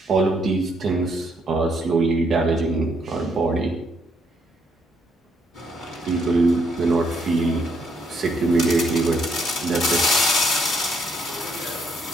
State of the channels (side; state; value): both; normal; correlation 0.72